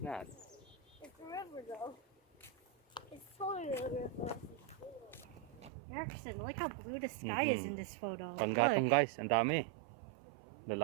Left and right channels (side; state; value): left; drops out; at 5.7 s